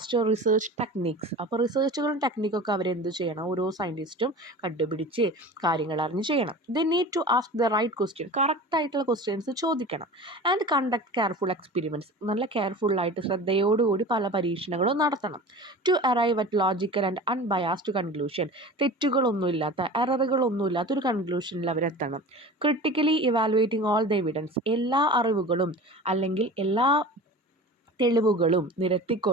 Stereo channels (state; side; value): normal; both; correlation 0.36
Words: research techniques. അപ്പോൾ റിസർച്ചുകളും ടെക്നിക്കൊക്കെ അവരെന്ത് ചെയ്യണം? ഓരോ സയൻറ്റിസ്റ്റും കണ്ടുപിടിച്ച് കാര്യങ്ങൾ അറിഞ്ഞ് ചെയ്യണം. They need to ask the right question. കറക്റ്റായിട്ടുള്ള ക്വസ്റ്റ്യൻസ് ചോദിക്കണം. And conduct careful experiments. നല്ല കെയർഫുള്ളായിട്ട് ശ്രദ്ധയോടുകൂടി പല പരീക്ഷണങ്ങളും നടത്തണം. To arrive at logical and unbiased conclusion. തെറ്റുകളൊന്നുമില്ലാത്ത, എററുകളൊന്നുമില്ലാത്ത ഒരു കൺക്ലൂഷനിൽ അവരെത്തണം. Critically evaluating all the evidence. എല്ലാ അറിവുകളും അല്ലെങ്കിൽ എല്ലാ തെളിവുകളും